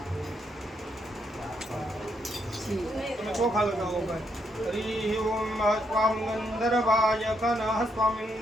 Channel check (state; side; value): normal; both; correlation 0.77